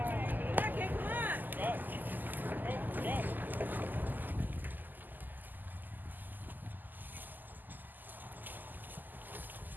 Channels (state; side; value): late; left; 0.087 ms